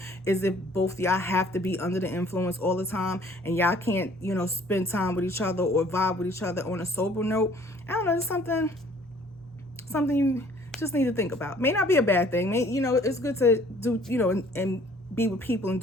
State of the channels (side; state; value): both; normal; correlation 0.56